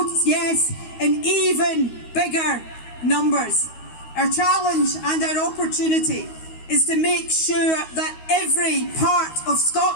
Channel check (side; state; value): right; late; 13 ms